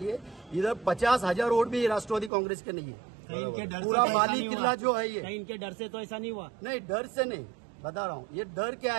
है इधर 50,000 वोट भी राष्ट्रवादी कांग्रेस के नहीं है। पूरा माली किला जो है ये, इनके डर से तो ऐसा नहीं हुआ। नहीं, डर से नहीं, बता रहा हूँ। ये डर क्या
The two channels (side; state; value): left; drops out; at 2.3 s